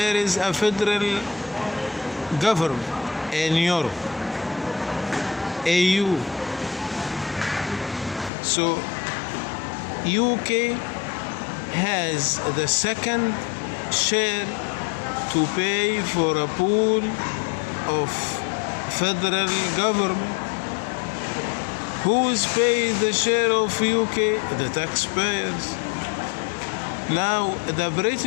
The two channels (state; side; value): drops out; right; at 8.3 s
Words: is a federal government in Europe, AU. So UK has the second share to pay for a pool of federal government. Who is paid the share of UK? The taxpayers. Now the